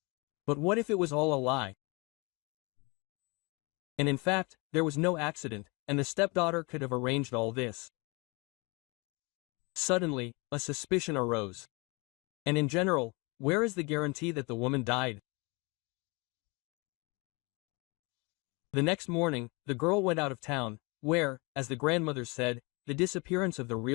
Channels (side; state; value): right; quieter; 28.5 dB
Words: But what if it was all a lie? And in fact, there was no accident, and the stepdaughter could have arranged all this. Suddenly, a suspicion arose. And in general, where is the guarantee that the woman died? The next morning, the girl went out of town, where, as the grandmother said, the disappearance of the